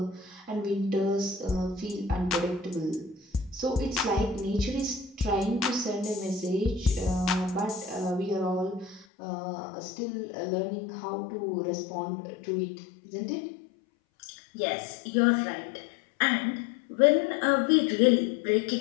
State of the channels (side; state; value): right; drops out; at 9.1 s